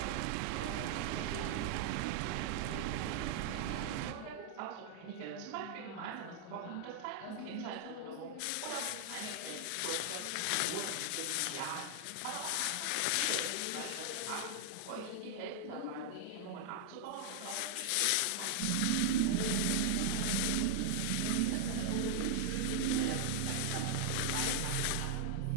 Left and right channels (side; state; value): both; different; correlation -0.01